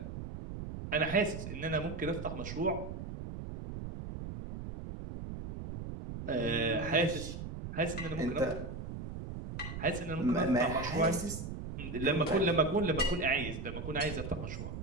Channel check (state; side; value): noise; right; rumble, 7 dB below the sound